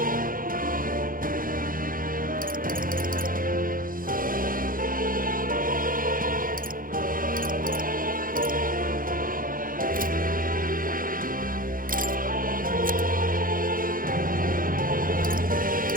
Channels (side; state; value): left; late; 0.41 ms